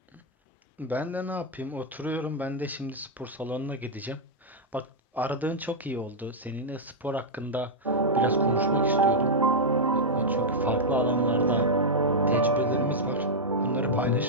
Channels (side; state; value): both; normal; correlation -0.05